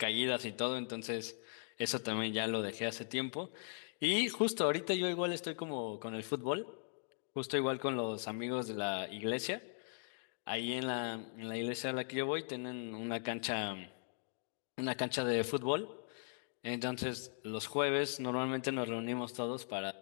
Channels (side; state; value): right; silent; digital silence